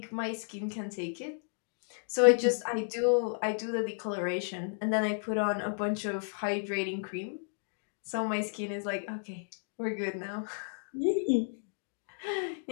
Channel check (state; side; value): silent; right; digital silence